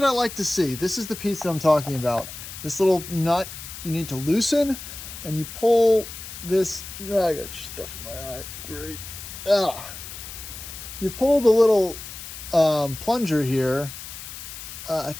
I like to see, this is the piece that I'm talking about. This little nut you need to loosen, and you pull this, I got stuff in my eye, great. You pull the little plunger here. I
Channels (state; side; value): noise; left; hiss, 11 dB below the sound